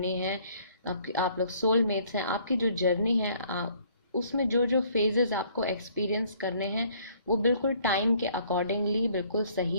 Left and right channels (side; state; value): both; inverted; correlation -0.61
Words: है, आप लोग सोलमेट्स हैं, आपकी जो जर्नी है उसमें जो जो फेजेस आपको एक्सपीरियंस करने हैं वो बिल्कुल टाइम के अकॉर्डिंगली बिल्कुल